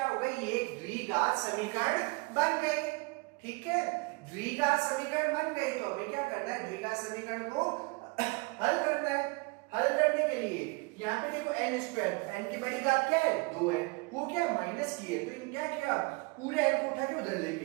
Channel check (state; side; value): quieter; left; 28.1 dB